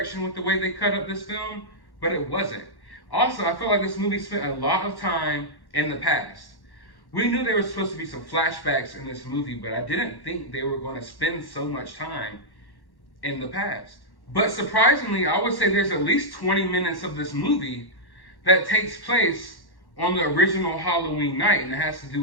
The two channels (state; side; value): late; right; 1.1 ms